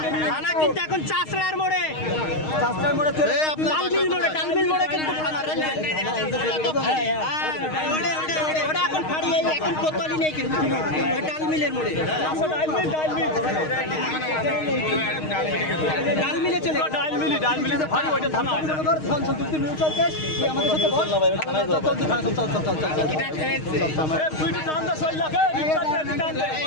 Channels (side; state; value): right; late; 6.4 ms